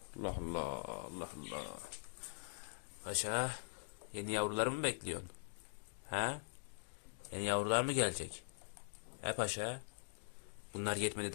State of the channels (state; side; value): silent; right; digital silence